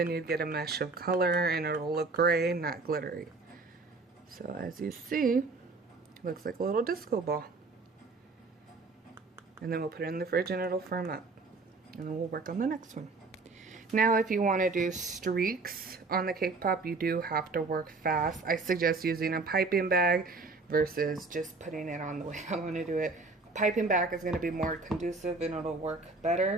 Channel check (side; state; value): left; quieter; 3.8 dB